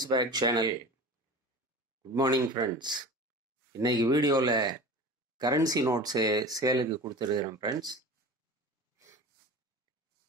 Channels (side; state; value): both; normal; correlation 0.34